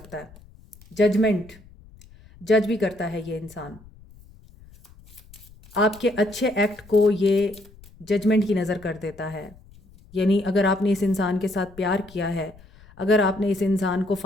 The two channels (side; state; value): left; noise; rumble, 24 dB below the sound